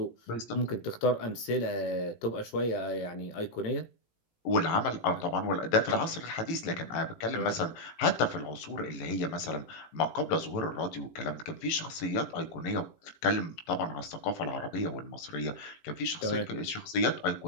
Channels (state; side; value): late; right; 18 ms